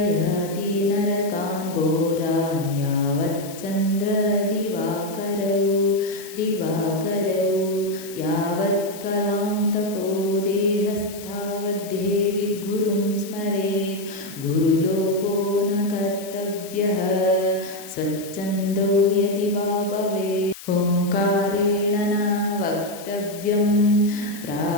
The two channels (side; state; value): left; noise; hiss, 15 dB below the sound